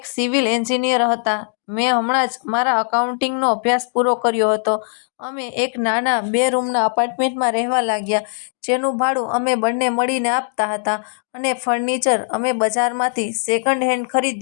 સિવિલ એન્જિનિયર હતા. મેં હમણાં જ મારા એકાઉન્ટિંગનો અભ્યાસ પૂરો કર્યો હતો. અમે એક નાના 2 રૂમના એપાર્ટમેન્ટમાં રહેવા લાગ્યા, જેનું ભાડું અમે બંને મળીને આપતા હતા. અને ફર્નિચર અમે બજારમાંથી સેકન્ડ હેન્ડ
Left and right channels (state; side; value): silent; right; digital silence